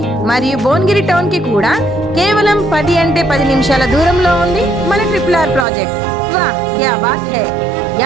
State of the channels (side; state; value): left; drops out; at 5.7 s